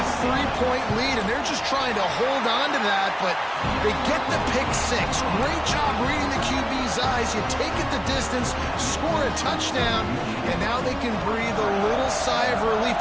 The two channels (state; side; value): identical; both; correlation 1.00